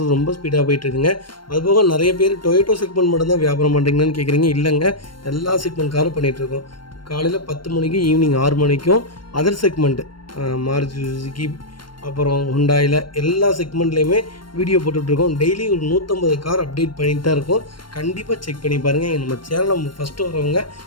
ரொம்ப ஸ்பீடாக போயிட்டு இருக்குங்க. அதுபோக நிறைய பேர் டொயோட்டோ செக்மெண்ட் மட்டும் தான் வியாபாரம் பண்ணுறீங்கன்னு கேட்குறீங்க. இல்லைங்க, எல்லா செக்மெண்ட் காரும் பண்ணிகிட்ருக்கோம். காலையில் 10 மணிக்கு ஈவினிங் 6 மணிக்கும் அதர் செக்மெண்ட்டு மாருதி சுசுகி அப்புறம் ஹுண்டாயில் எல்லா செக்மெண்ட்லேயுமே வீடியோ போட்டுட்ருக்கோம். டெய்லி ஒரு 150 கார் அப்டேட் பண்ணிட்டு தான் இருக்கோம். கண்டிப்பாக செக் பண்ணி பாருங்கள். நம்ம சேனலை ஃபஸ்ட்டு வரவங்க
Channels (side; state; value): right; late; 0.72 ms